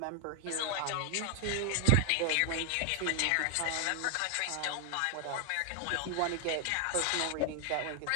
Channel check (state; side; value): different; both; correlation 0.00